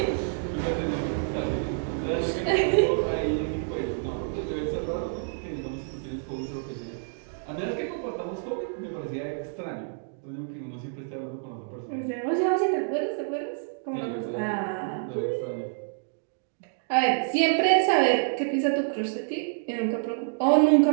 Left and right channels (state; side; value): silent; left; digital silence